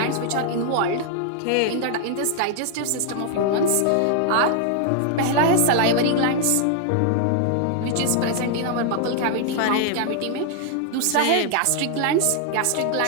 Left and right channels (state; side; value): different; both; correlation 0.00